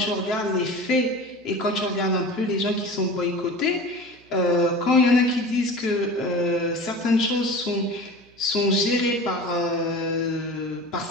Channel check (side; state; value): right; noise; hum, 30 dB below the sound